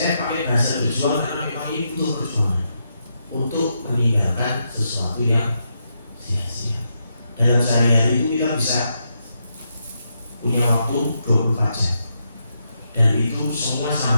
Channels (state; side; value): inverted; both; correlation -0.82